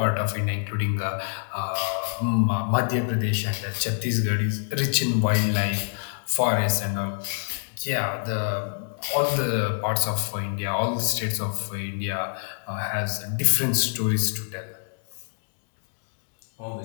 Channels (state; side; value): silent; right; digital silence